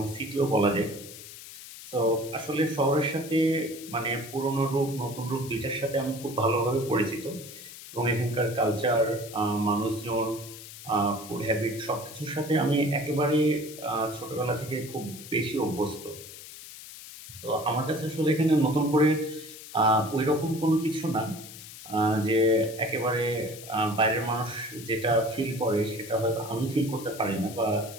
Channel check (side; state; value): left; noise; hiss, 14 dB below the sound